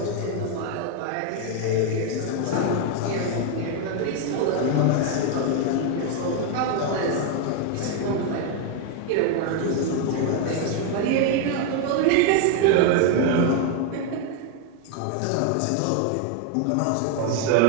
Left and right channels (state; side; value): different; both; correlation 0.01